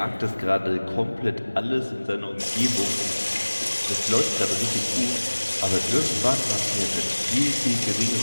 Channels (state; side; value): inverted; both; correlation -1.00